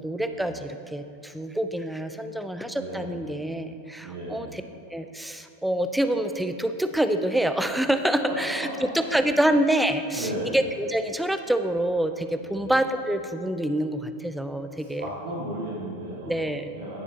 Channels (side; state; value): both; normal; correlation 0.76